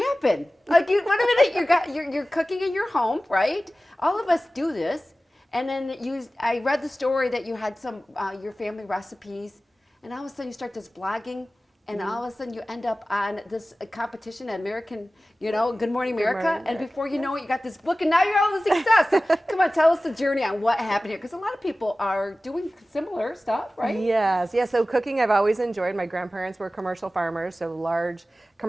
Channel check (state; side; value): normal; both; correlation 0.96